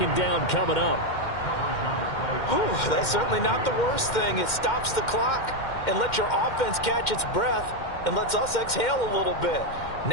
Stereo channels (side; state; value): right; late; 2.1 ms